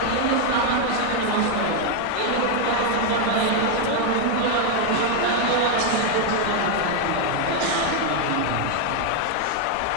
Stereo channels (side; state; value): both; different; correlation 0.01